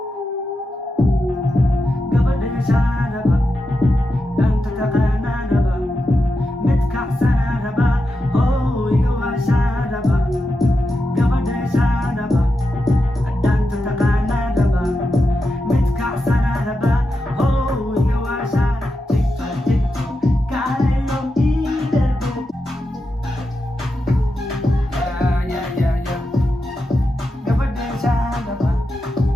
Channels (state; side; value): normal; both; correlation 0.88